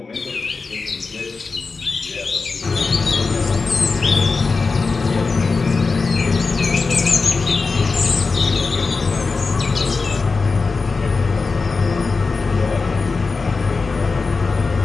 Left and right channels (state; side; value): quieter; right; 4.3 dB